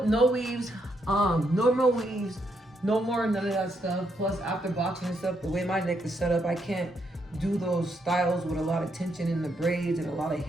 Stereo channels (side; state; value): both; normal; correlation 0.77